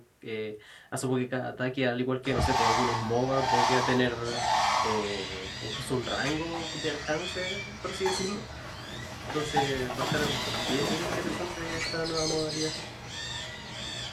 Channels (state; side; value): identical; both; correlation 1.00